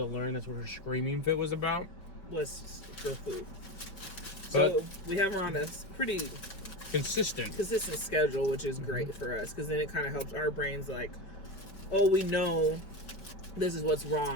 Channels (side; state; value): right; late; 5.1 ms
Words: learn that's what her screaming fit was about. Was for food. So we have her on a pretty consistent schedule, which is great for us, because then it kind of helps our brains we know this is what's